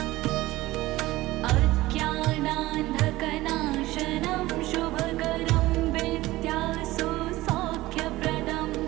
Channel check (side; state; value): left; quieter; 18.1 dB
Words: अज्ञानान्धकनाशनं शुभकरं विद्यासु सौख्यप्रदं